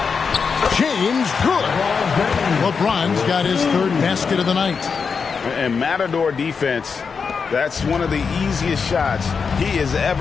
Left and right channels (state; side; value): quieter; right; 5.6 dB